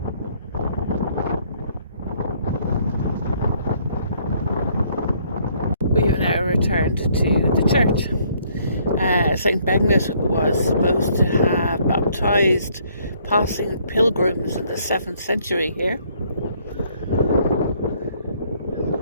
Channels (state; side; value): inverted; both; correlation -0.65